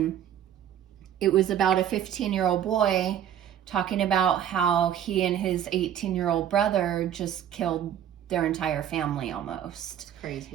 it was about a 15-year-old boy talking about how he and his 18-year-old brother just killed their entire family almost.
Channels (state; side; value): quieter; left; 10.1 dB